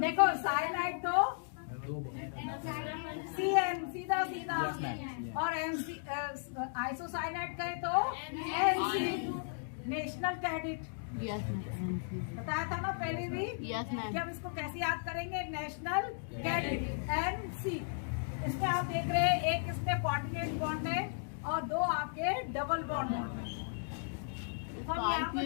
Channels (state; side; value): silent; right; digital silence